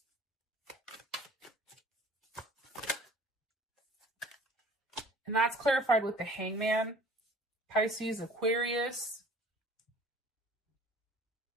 And that's clarified with the Hangman, Pisces, Aquarius.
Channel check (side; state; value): both; normal; correlation 0.50